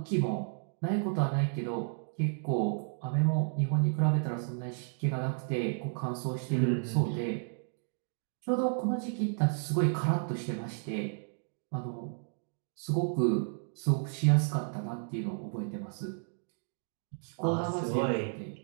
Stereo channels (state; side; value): silent; left; 56 dB below the other